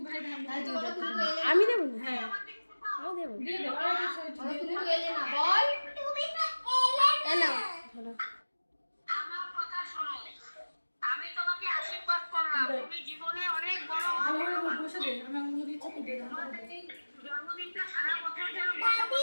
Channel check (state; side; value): inverted; both; correlation -1.00